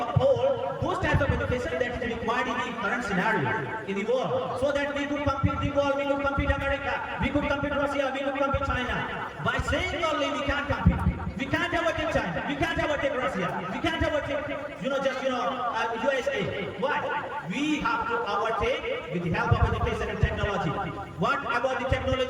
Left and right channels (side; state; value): both; identical; correlation 1.00